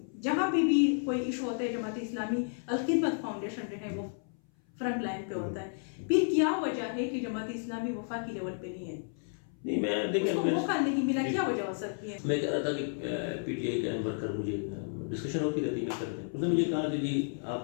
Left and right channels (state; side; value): silent; right; 56 dB below the other